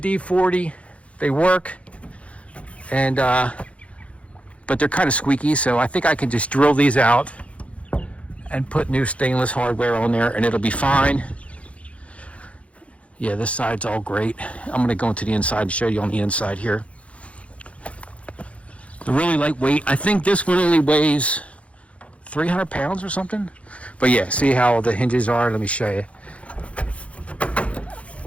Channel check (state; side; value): late; right; 0.063 ms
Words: They work, and but they're kind of squeaky, so I think I can just drill these out and put new stainless hardware on there, and it'll be fine. Yeah, this side's all great. I'm going to go into the inside and show you on the inside here. They're really lightweight. I think this one only weighs 300 pounds or something. But yeah, see how the hinges are? Let me show you.